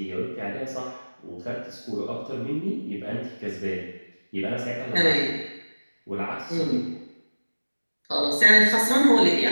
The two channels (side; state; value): both; inverted; correlation -1.00